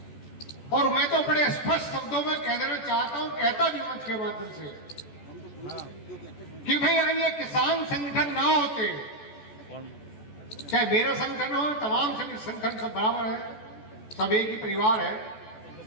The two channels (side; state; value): right; late; 14 ms